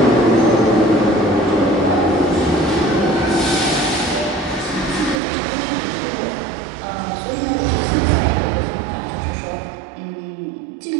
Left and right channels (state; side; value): drops out; left; at 5.2 s